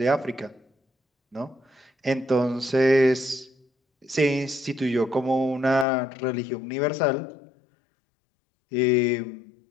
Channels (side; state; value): right; drops out; at 5.9 s